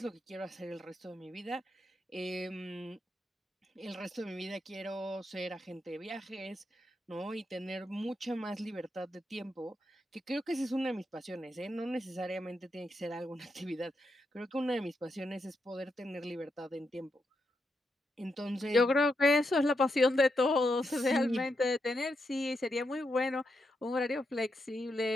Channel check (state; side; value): normal; both; correlation 0.83